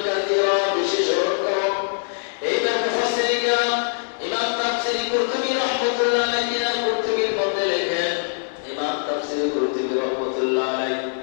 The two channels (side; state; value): right; silent; digital silence